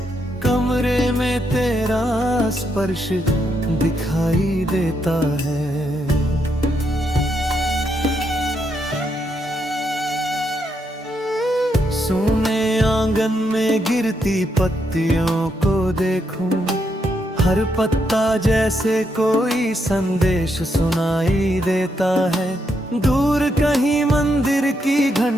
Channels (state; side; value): normal; both; correlation 0.79